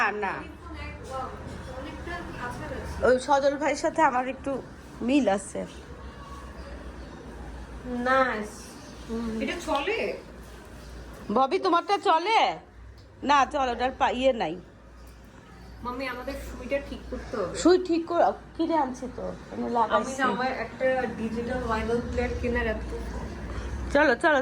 না, অনেকটা আচার আছে ওই সজল ভাইয়ের সাথে আমার একটু মিল আছে। নাইস। এটা চলে? ববি তোমারটা চলে না? চলো, ওটার ইয়ে নাই। মাম্মি আমাদের সুইটা ঠিক করতে হবে। সুই ঠিক করে কিনে আনছি তো, আমি আমি লাগাইছি। না আমার একটা ডিজিটাল ভাইনাল প্লেয়ার কেনার এত চলো চলো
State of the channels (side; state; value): both; identical; correlation 1.00